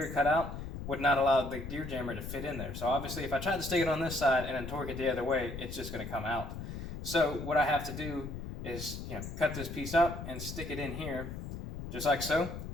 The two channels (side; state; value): left; noise; rumble, 8 dB below the sound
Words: cut out would not allow the gear jammer to fit in there. So obviously, if I tried to stick it on this side and then torque it the other way, it's just gonna come out. So what I have to do is, cut this piece up and stick it in here, just like so.